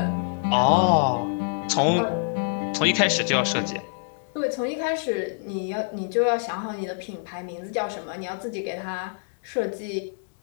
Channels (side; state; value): right; silent; digital silence